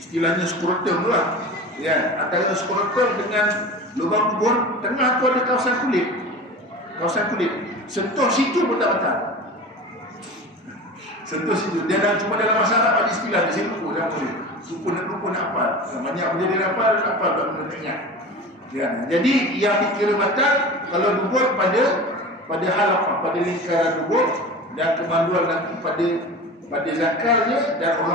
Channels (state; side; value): normal; both; correlation 0.34